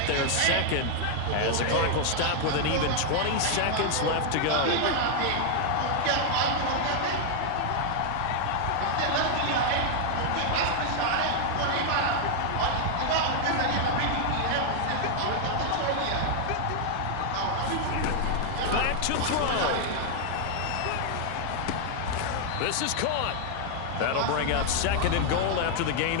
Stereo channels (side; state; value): both; different; correlation 0.00